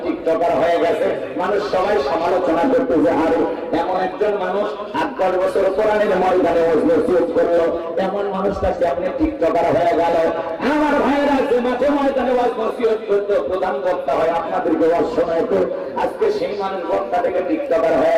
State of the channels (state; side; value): identical; both; correlation 1.00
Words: টিকটকার হয়ে গেছে। মানুষ সবাই সমালোচনা করতে যে আরে এমন একজন মানুষ 8-10 বছর কোরআনের ময়দানে ওয়াজ নসিহত করলো, এমন মানুষটাকে আপনি টিকটকার হয়ে গেল। আমার ভাইয়েরা যে মাঠে ময়দানে ওয়াজ নসিহত করতো, প্রধান বক্তা হয় আপনাদেরকে ওয়াজ শোনাইতো, আজকে সেই মানুষ বক্তা থেকে টিকটকার